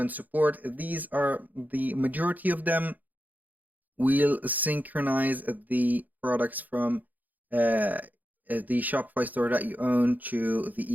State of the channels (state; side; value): late; left; 0.082 ms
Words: support. These are the majority of them will synchronize the products from the Shopify store that you own to